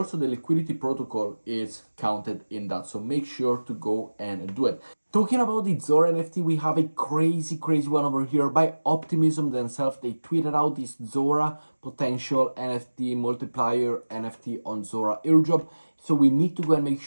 the liquidity protocol is counted in that, so make sure to go and do it. Talking about the Zora NFT, we have a crazy one over here by Optimism themselves. They tweeted out this Zora potential NFT multiplier NFT on Zora airdrop. So we need to go and make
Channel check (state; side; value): inverted; both; correlation -1.00